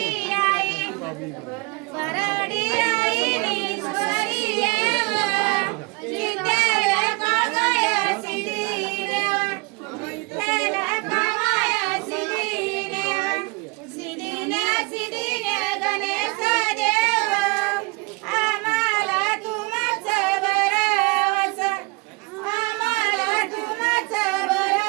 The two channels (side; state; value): left; quieter; 27.7 dB